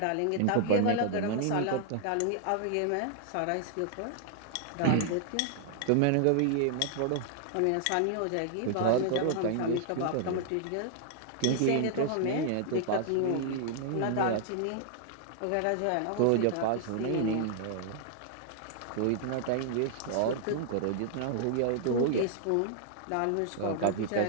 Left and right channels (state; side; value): different; both; correlation -0.01